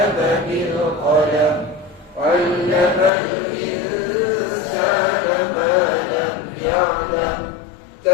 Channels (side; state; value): right; drops out; at 3.1 s